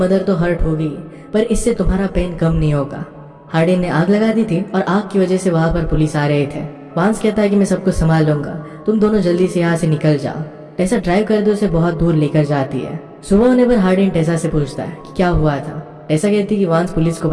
तो हर्ट होगी पर इससे तुम्हारा पेन कम नहीं होगा। हार्डिन ने आग लगा दी थी और आग की वजह से वहां पर पुलिस आ रहे थे। वांस कहता है कि मैं सब कुछ संभाल लूंगा, तुम दोनों जल्दी से यहाँ से निकल जाओ। टेसा ड्राइव कर दे उसे बहुत दूर लेकर जाती है। सुबह होने पर हार्डिन टेसा से पूछता है कि क्या हुआ था। टेसा कहती है कि वांस पुलिस को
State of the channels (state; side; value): identical; both; correlation 1.00